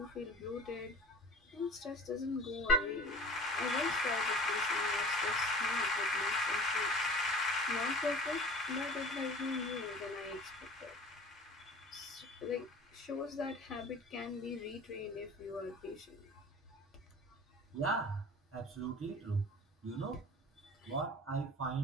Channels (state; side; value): normal; both; correlation 0.41